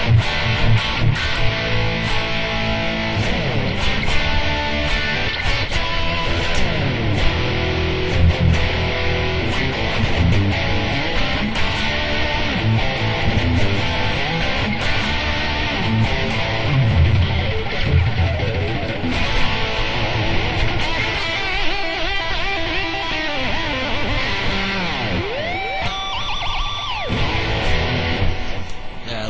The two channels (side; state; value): both; identical; correlation 1.00